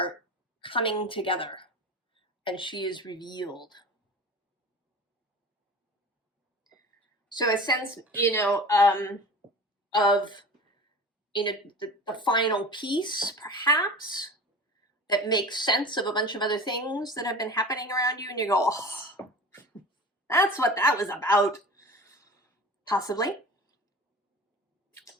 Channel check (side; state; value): both; normal; correlation 0.36